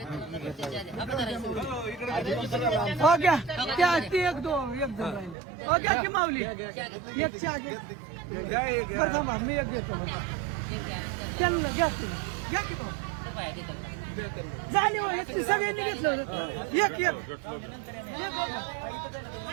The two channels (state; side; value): drops out; left; at 5.4 s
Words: हो घ्या त्या ती 1-2 एक जण राहिले. हो घ्या की माऊली एक चहा घ्या. मी एक घेतो त्यांना घ्या की घ्या की झाले हो, इतकी सगळ्यांनी घेतलं. एक